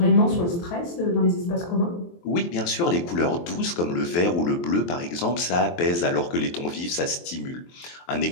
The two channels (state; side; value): late; right; 23 ms